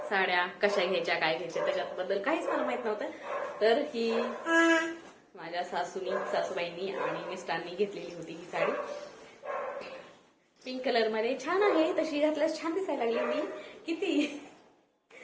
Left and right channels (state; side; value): identical; both; correlation 1.00